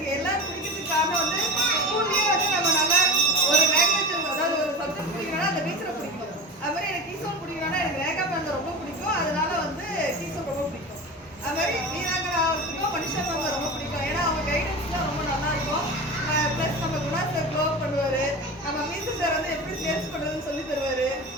எல்லாரும் பிடிக்கிறதுக்கு காரணம் வந்து ஸ்கூல்லயே வந்து நம்ம நல்லா ஒரு லாங்குவேஜ், அதாவது ஒரு சப்ஜெக்ட் பிடிக்கணும்னா அந்த டீச்சரை பிடிக்கும். அது மாதிரி எனக்கு கீசோல் பிடிக்கணும்னா எனக்கு ரேகா மேம் ரொம்ப பிடிக்கும். அதனால வந்து கீசோல் ரொம்ப பிடிக்கும். அது மாதிரி வீராங்கனா அவருக்கும் மனுஷா மேம் ரொம்ப பிடிக்கும். ஏன்னா அவங்க கைடன்ஸ்லாம் ரொம்ப நல்லா இருக்கும். ப்ளஸ் நம்ம குணா சார் க்ளோ பண்ணுவார். நம்ம மீசு சார் வந்து எப்படி சேல்ஸ் பண்ணுறதுன்னு சொல்லி தருவார்.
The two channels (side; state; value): both; normal; correlation 0.28